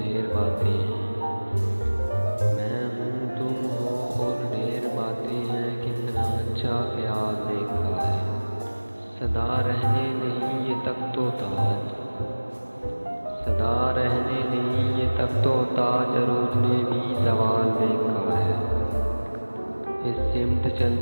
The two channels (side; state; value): both; inverted; correlation -1.00